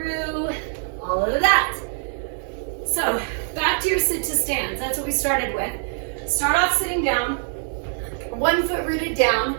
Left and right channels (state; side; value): silent; left; 57 dB below the other